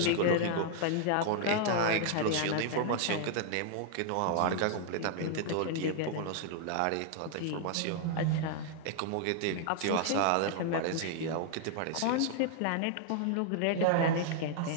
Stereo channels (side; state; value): both; different; correlation -0.01